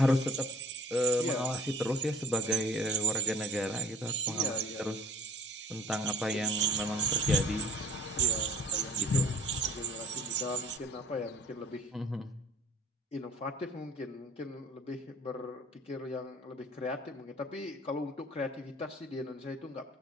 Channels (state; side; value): normal; both; correlation 0.47